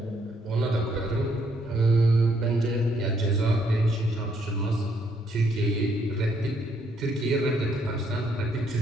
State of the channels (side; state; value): both; normal; correlation 0.71